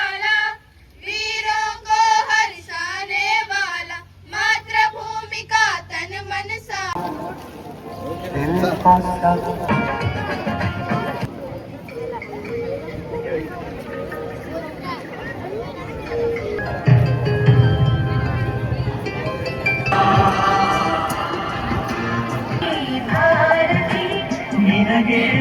वीरों को हर्षाने वाला मातृभूमि का तन मन सा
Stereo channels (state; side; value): identical; both; correlation 1.00